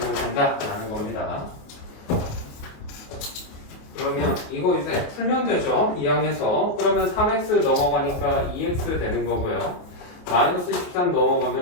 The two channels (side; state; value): right; late; 28 ms